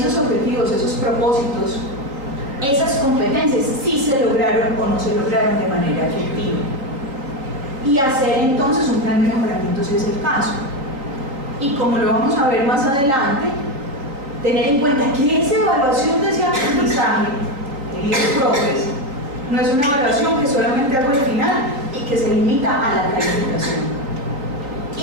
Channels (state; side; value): late; left; 3.8 ms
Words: objetivos, esos propósitos, esas competencias sí se lograron o no se lograron de manera efectiva. Y hacer entonces un plan de mejoramiento si es el caso. Y como lo vamos a ver más adelante, tener en cuenta que esa evaluación de ese aprendizaje, queridos profes, no es una evaluación que solamente hago al final y que se limita a la calificación.